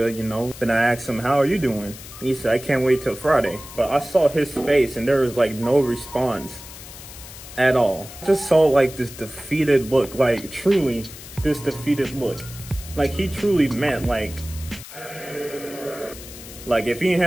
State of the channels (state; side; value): noise; left; hiss, 15 dB below the sound